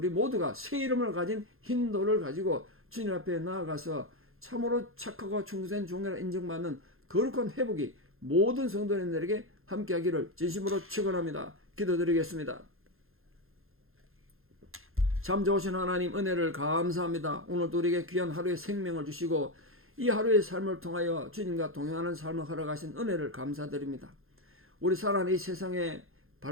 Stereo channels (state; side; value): late; left; 0.61 ms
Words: 모두가 새 이름을 가진 흰 돌을 가지고 주님 앞에 나아가서 참으로 착하고 충성된 종이라 인정받는 거룩한 회복이 모든 성도님들에게 함께하기를 진심으로 축원합니다. 기도드리겠습니다. 참 좋으신 하나님, 은혜를 감사합니다. 오늘도 우리에게 귀한 하루의 생명을 주시고 이 하루의 삶을 통하여 주님과 동행하는 삶을 허락하신 은혜를 감사드립니다. 우리 살아가는 이 세상에